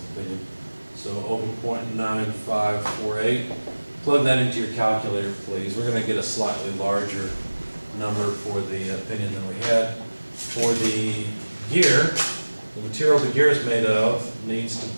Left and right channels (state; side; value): inverted; both; correlation -1.00